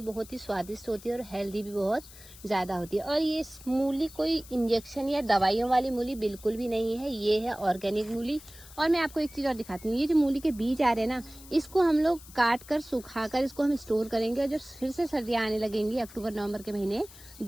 बहुत ही स्वादिष्ट होती है और हेल्दी भी बहुत ज़्यादा होती है। और ये मूली कोई इंजेक्शन या दवाइयों वाली मूली बिल्कुल भी नहीं है, ये है ऑर्गेनिक मूली। और मैं आपको एक चीज़ और दिखाती हूँ, ये जो मूली के बीज आ रहे हैं ना, इसको हम लोग काट कर सुखा कर इसको हम स्टोर करेंगे और जब फिर से सर्दियाँ आने लगेंगी अक्टूबर नवंबर के महीने,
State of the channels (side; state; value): left; noise; hiss, 19 dB below the sound